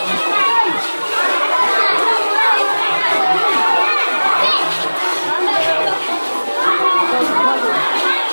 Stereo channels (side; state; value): both; inverted; correlation -1.00